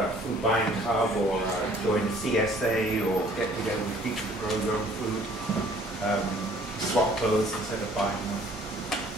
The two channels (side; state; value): both; normal; correlation 0.56